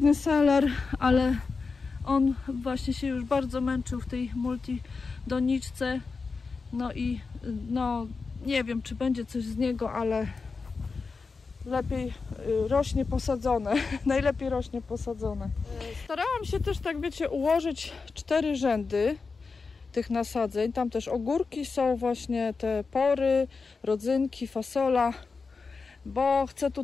seler, ale on właśnie się już bardzo męczył w tej multidoniczce. No i no nie wiem, czy będzie coś z niego, ale lepiej rośnie posadzone. Najlepiej rośnie posadzone. Starałam się też, tak wiecie, ułożyć 4 rzędy tych nasadzeń. Tam też ogórki są, właśnie te pory, rodzynki, fasola, bo chcę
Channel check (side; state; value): right; quieter; 4.5 dB